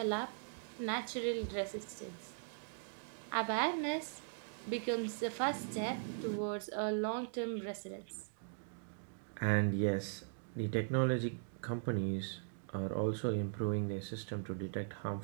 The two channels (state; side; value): silent; left; digital silence